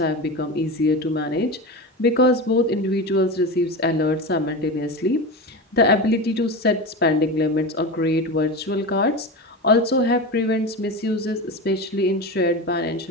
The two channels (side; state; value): both; normal; correlation 0.24